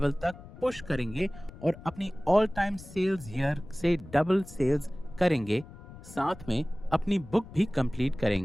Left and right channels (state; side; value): noise; left; rumble, 17 dB below the sound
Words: तक पुश करेंगे और अपनी ऑल टाइम सेल्स ईयर से डबल सेल्स करेंगे, साथ में अपनी बुक भी कंप्लीट